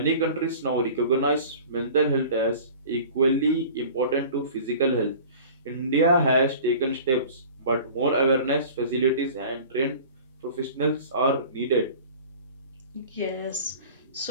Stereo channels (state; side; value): inverted; both; correlation -0.42